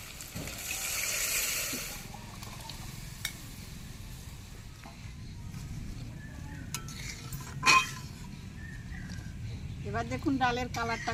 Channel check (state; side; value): identical; both; correlation 1.00